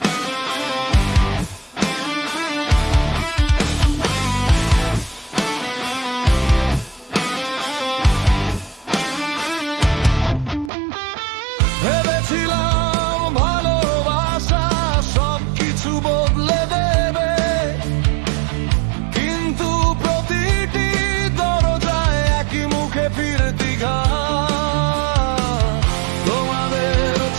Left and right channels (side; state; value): left; drops out; at 10.7 s